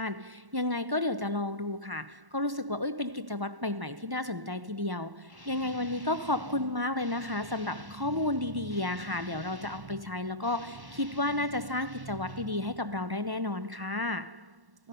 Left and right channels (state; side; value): late; left; 1.1 ms